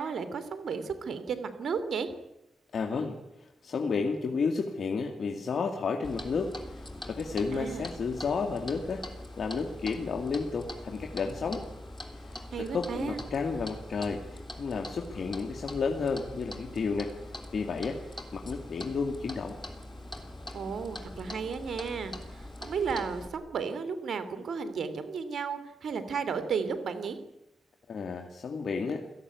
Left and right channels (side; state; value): both; normal; correlation 0.79